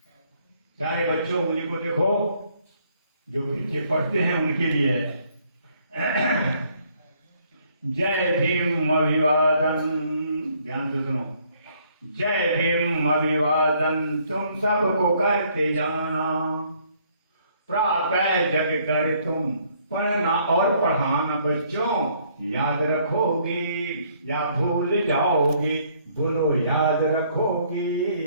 सारे बच्चों उंगली को देखो, जो पीछे पढ़ते हैं उनके लिए जय भीम अभिवादन। ध्यान से सुनो। जय भीम अभिवादन तुम सबको करते जाना, प्रातः जग कर तुम पढ़ना और पढ़ाना। बच्चों याद रखोगे या भूल जाओगे? बोलो याद रखोगे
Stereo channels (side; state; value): both; inverted; correlation -0.66